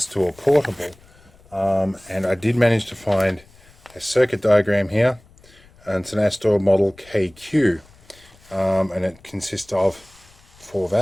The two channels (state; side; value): noise; left; rumble, 27 dB below the sound